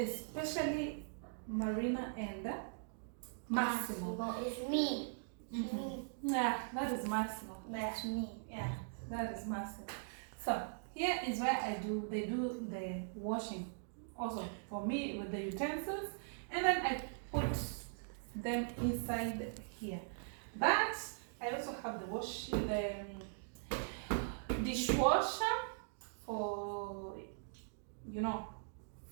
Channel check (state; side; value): silent; left; digital silence